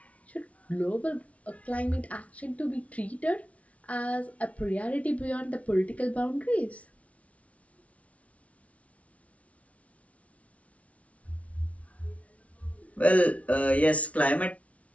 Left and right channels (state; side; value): late; right; 0.065 ms